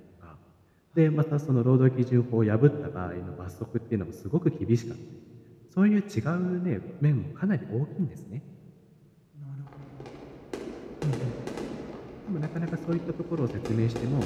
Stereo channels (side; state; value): both; identical; correlation 1.00